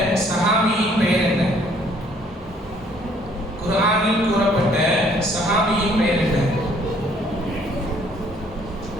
சஹாபியின் பெயர் என்ன? குர்ஆனில் கூறப்பட்ட சஹாபியின் பெயர் என்ன?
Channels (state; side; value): normal; both; correlation 0.62